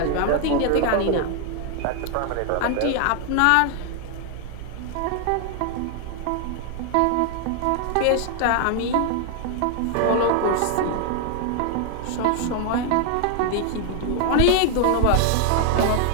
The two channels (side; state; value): both; different; correlation 0.00